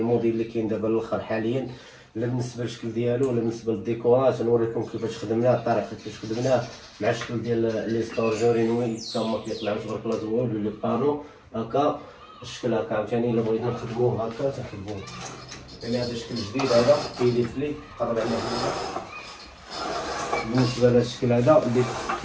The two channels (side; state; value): both; identical; correlation 1.00